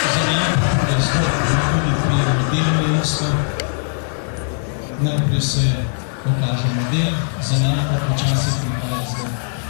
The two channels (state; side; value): silent; right; digital silence